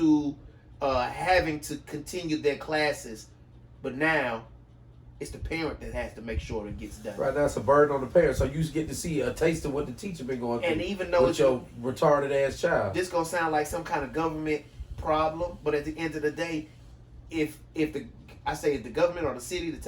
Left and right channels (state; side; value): identical; both; correlation 1.00